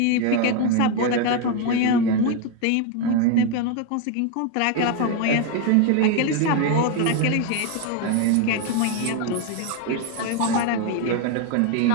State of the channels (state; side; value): different; both; correlation 0.01